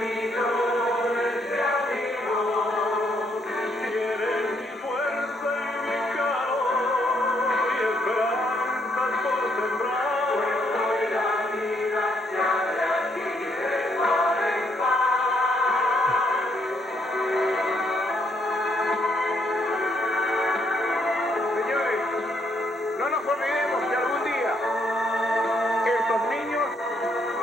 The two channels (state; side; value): normal; both; correlation 0.72